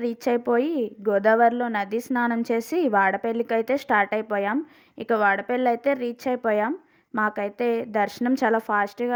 రీచ్ అయిపోయి గోదావరిలో నది స్నానం చేసి వాడపల్లికైతే స్టార్ట్ అయిపోయాం. ఇక వాడపల్లి అయితే రీచ్ అయిపోయాం. మాకైతే దర్శనం చాలా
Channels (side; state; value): both; identical; correlation 1.00